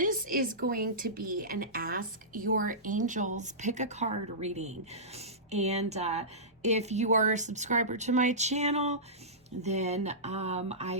is going to be an Ask Your Angels Pick a Card reading. And if you are a subscriber to my channel, then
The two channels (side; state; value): both; normal; correlation -0.19